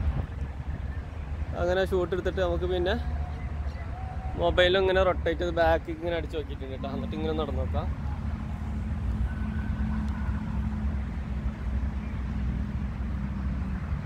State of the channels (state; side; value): identical; both; correlation 1.00